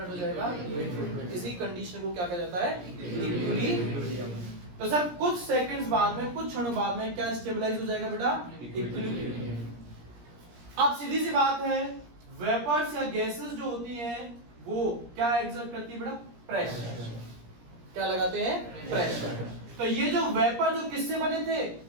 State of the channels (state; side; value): late; left; 17 ms